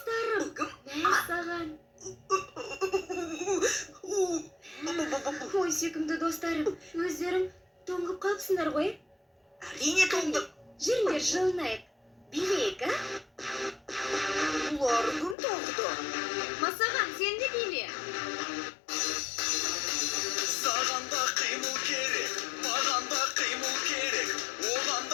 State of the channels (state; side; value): drops out; right; at 15.4 s